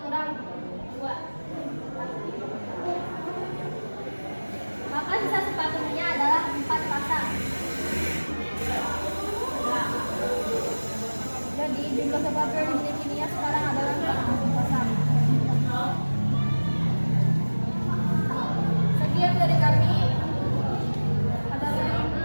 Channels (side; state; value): both; inverted; correlation -1.00